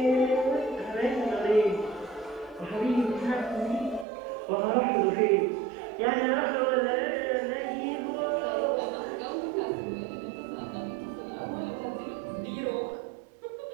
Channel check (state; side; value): drops out; left; at 4.0 s